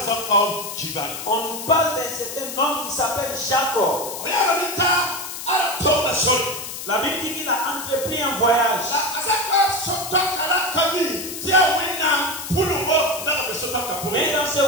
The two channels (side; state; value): left; noise; hiss, 8 dB below the sound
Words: on nous parle d'un certain homme qui s'appelle Jacob. La Bible dit qu'il a entrepris un voyage. Mais dans